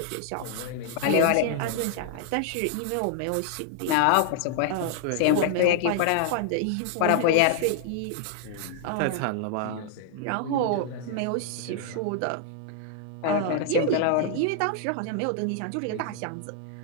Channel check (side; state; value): both; different; correlation 0.00